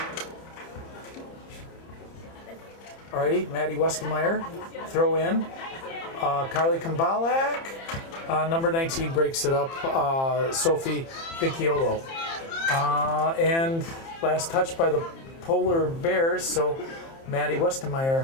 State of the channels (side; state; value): right; late; 30 ms